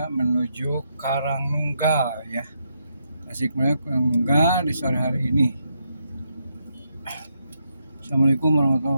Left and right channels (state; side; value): inverted; both; correlation -0.79